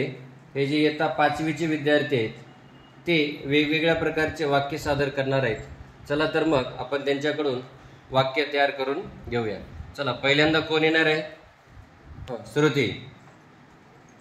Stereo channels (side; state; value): both; identical; correlation 1.00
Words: हे जे इयत्ता 5वीचे विद्यार्थी आहेत ते वेगवेगळ्या प्रकारचे वाक्य सादर करणार आहेत। चला तर मग आपण त्यांच्याकडून वाक्य तयार करून घेऊया। चला, पहिल्यांदा कोण येणार आहे? Shruti.